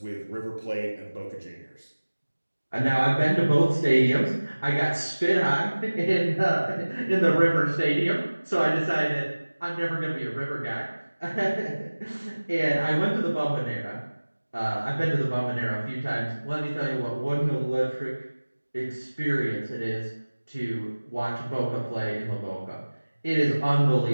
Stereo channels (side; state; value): both; inverted; correlation -1.00